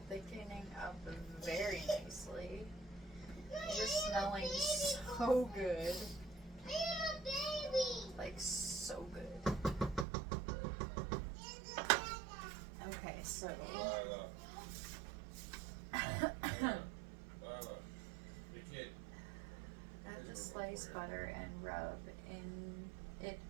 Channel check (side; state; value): left; drops out; at 10.1 s